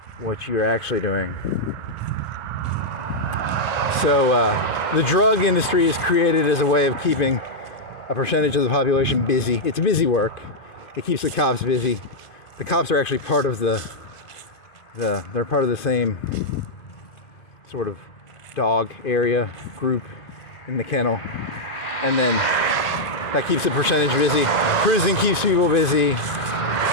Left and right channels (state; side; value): late; right; 2.5 ms